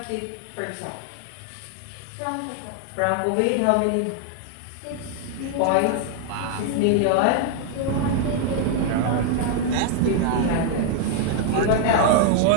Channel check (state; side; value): different; both; correlation 0.00